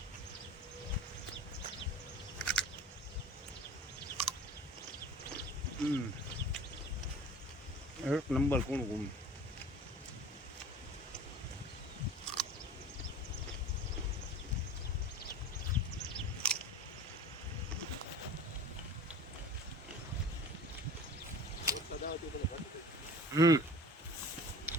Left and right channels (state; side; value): normal; both; correlation 0.40